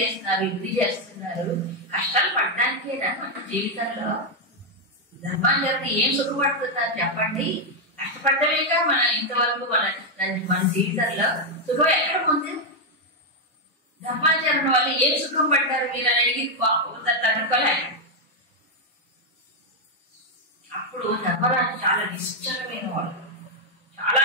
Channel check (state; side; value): normal; both; correlation 0.01